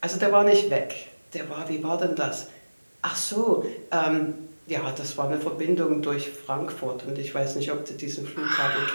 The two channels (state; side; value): inverted; both; correlation -1.00